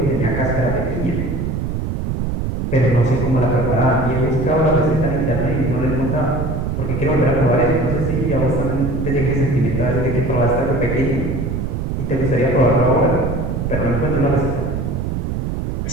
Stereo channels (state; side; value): noise; right; rumble, 2 dB below the sound